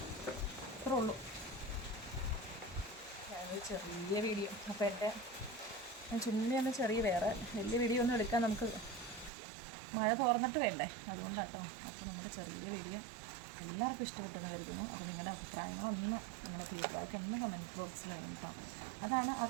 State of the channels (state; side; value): drops out; left; at 9.3 s